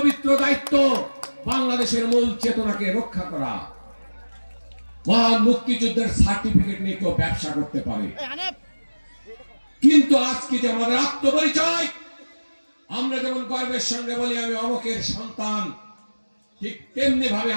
দায়িত্ব বাংলাদেশের মূল চেতনাকে রক্ষা করা। মহান মুক্তিযুদ্ধের সার্টিফিকেট নিয়ে কেউ ব্যবসা করতে পারে, কিন্তু আজকে যে আমাদের আত্মপরিচয়, আমরা যেমন গর্বের সঙ্গে বলি আমি অমুকের সন্তান, ঠিক তেমনি ভাবে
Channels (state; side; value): inverted; both; correlation -1.00